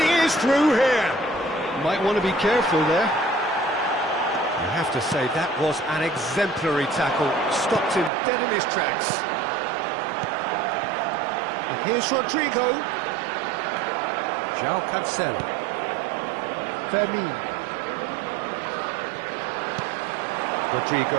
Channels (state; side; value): drops out; left; at 8.1 s